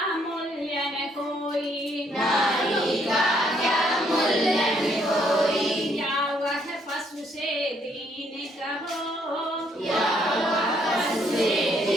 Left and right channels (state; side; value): normal; both; correlation 0.69